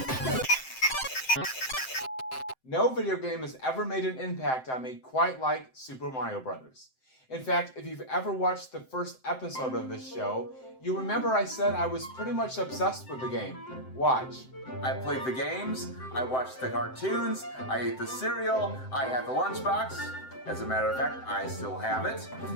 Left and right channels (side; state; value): right; late; 7.7 ms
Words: No video game has ever made an impact on me quite like Super Mario Bros. In fact, if you've ever watched the first episode of this show, you remember I said I was pretty much obsessed with the game. Watch. I played the games, I watched the cartoons, I ate the cereal, I had the lunchbox. As a matter of fact, I still have it.